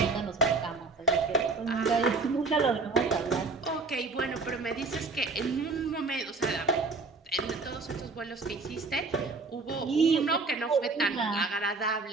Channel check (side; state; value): left; quieter; 3.9 dB